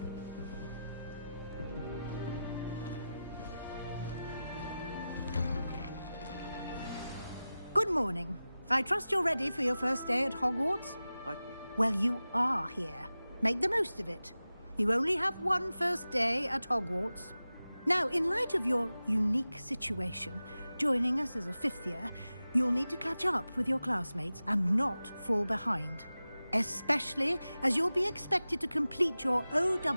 Good morning. I trust you're ready for your first day at Hogwarts? Well, you are here. Make the most of it. You only have one first day at Hogwarts. Now, in light of your unique situation, joining us as a fifth year, you'll need to catch up with your classmates and not fall behind. Especially as you'll be expected to complete your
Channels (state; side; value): inverted; both; correlation -0.95